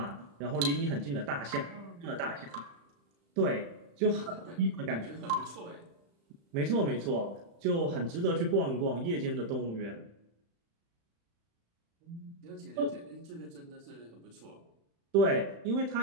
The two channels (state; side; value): late; left; 35 ms